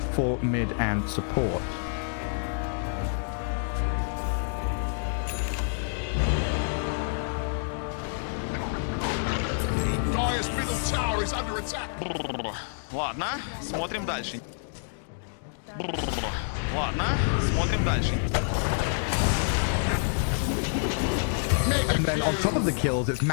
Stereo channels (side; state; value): right; silent; digital silence